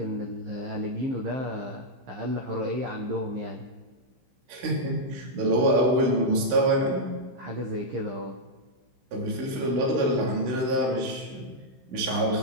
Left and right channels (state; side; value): late; left; 15 ms